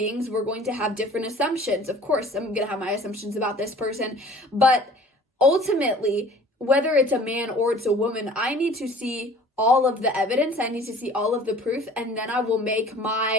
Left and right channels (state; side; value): normal; both; correlation 0.48